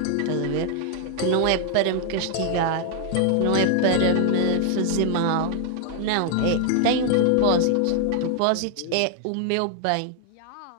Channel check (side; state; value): both; different; correlation 0.00